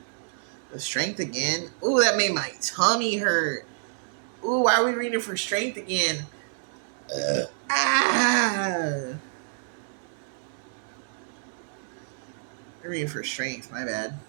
The strength again. Ooh, that made my tummy hurt. Ooh, why are we reading for strength again? Ah. I'm reading for strength. My bad.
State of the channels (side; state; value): left; silent; digital silence